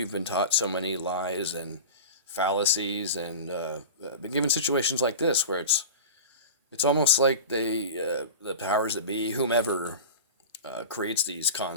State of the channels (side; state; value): both; inverted; correlation -0.31